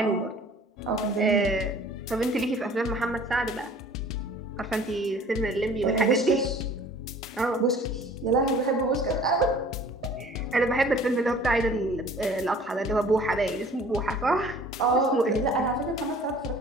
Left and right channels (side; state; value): both; normal; correlation 0.49